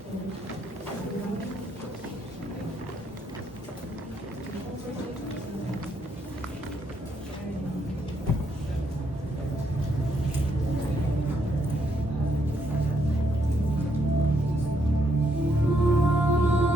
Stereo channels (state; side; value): normal; both; correlation 0.74